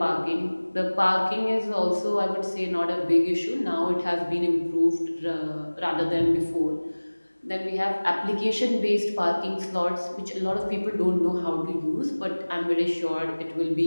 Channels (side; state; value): both; inverted; correlation -1.00